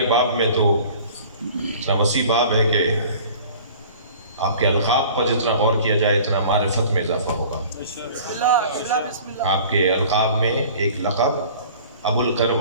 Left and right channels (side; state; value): both; inverted; correlation -0.46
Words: باب میں تو اتنا وسیع باب ہے کہ آپ کے القاب پر جتنا غور کیا جائے اتنا معرفت میں اضافہ ہوگا۔ آپ کے القاب میں ایک لقب ابو